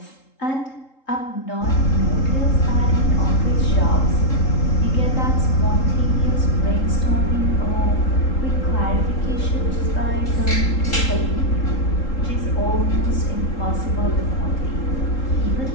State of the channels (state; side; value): late; right; 3.8 ms